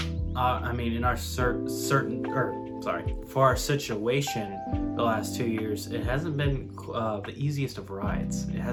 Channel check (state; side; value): identical; both; correlation 1.00